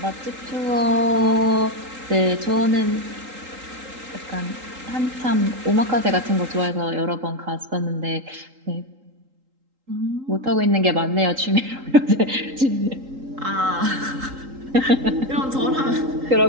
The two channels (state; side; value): late; left; 3.8 ms